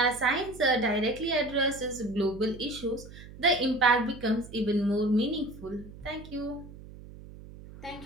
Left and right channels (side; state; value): right; noise; hum, 17 dB below the sound